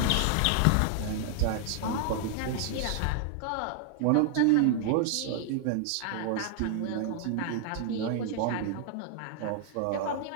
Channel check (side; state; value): both; different; correlation 0.00